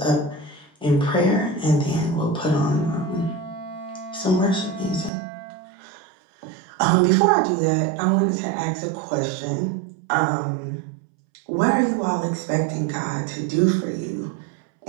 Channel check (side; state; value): left; drops out; at 5.1 s